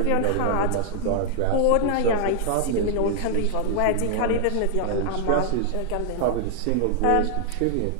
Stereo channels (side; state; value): both; different; correlation 0.00